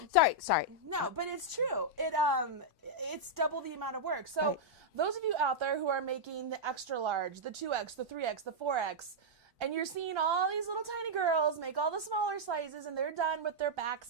No, but it's true. It's double the amount of work. So those of you out there who are making the extra large, the 2X, the 3X, the 4X, and you're seeing all these little tiny girls make all the smaller sizes and they're done with their backs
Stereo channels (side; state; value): both; normal; correlation -0.06